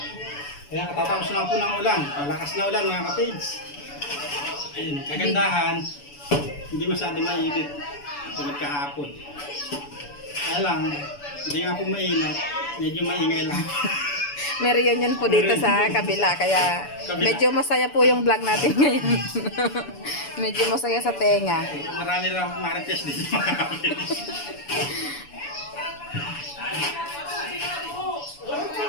Kaya katatapos na po ng ulan. Malakas na ulan mga kapage. Ayun, kagandahan, hindi masyado mainit. Tulad kahapon. Kaya lang, hindi nga po mainit. Medyo maingay lang. May reunion po dito sa kabila, kaya medyo masaya po yung vlog natin ngayon. Medyo masaya sa tenga. Marami lang marites dito mga kapage.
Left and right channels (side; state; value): right; late; 7.0 ms